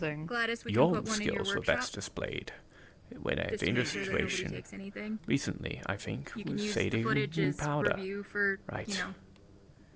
Gladys, we can your put one in your skills were workshop. best displayed in a Just to dangerous make sure that nobody situation takes anything. recently, I think, You can with use the Sadie footage and as Powder. review for, Right. you know, You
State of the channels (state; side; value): identical; both; correlation 1.00